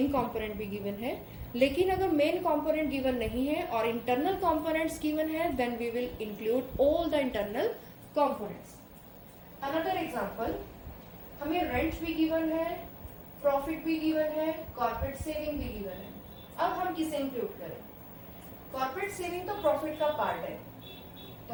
कंपोनेंट भी गिवन है, लेकिन अगर मेन कंपोनेंट गिवन नहीं है और इंटरनल कंपोनेंट्स गिवन है, then we will include all the internal components. Another example, हमें रेंट भी गिवन है, प्रॉफिट भी गिवन है, कॉर्पोरेट सेविंग भी गिवन है. अब हम किसे इंक्लूड करें? कॉर्पोरेट सेविंग तो प्रॉफिट का पार्ट है,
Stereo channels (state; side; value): identical; both; correlation 1.00